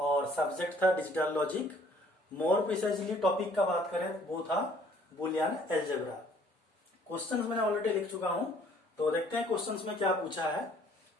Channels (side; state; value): both; normal; correlation 0.59